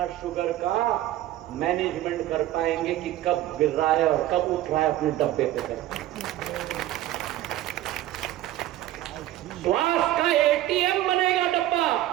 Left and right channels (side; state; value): left; quieter; 14.5 dB